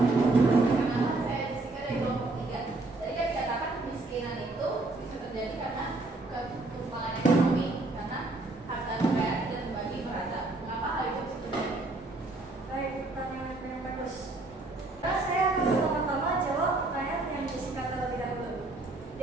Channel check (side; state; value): left; quieter; 3.0 dB